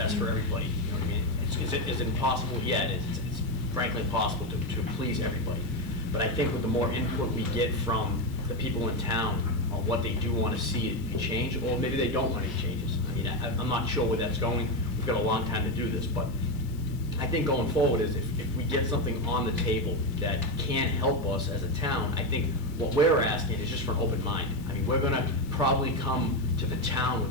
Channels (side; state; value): left; noise; hiss, 25 dB below the sound